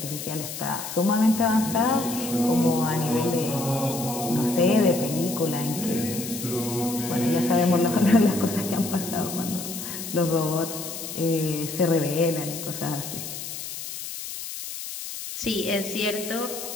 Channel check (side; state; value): left; noise; hiss, 8 dB below the sound